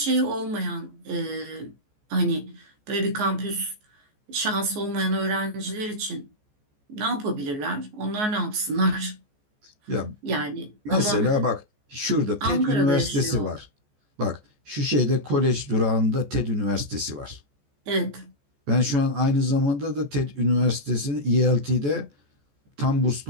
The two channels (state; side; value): late; left; 14 ms